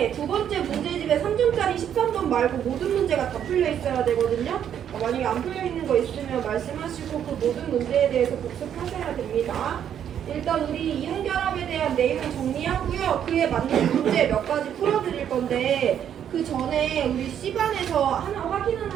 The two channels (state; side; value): quieter; left; 9.4 dB